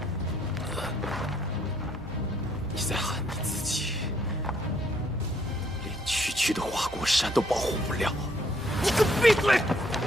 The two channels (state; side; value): normal; both; correlation 0.68